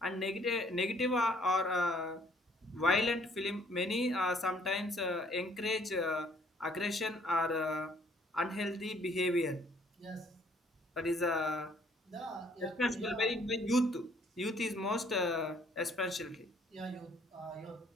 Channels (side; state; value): both; normal; correlation 0.62